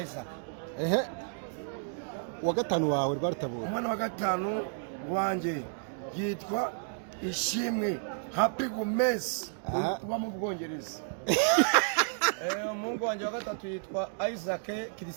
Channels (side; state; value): left; silent; digital silence